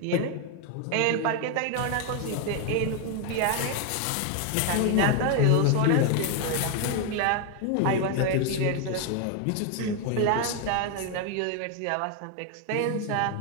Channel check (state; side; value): different; both; correlation 0.01